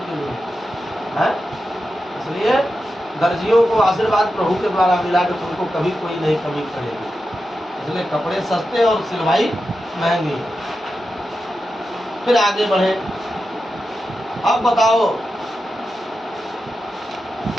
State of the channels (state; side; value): normal; both; correlation 0.90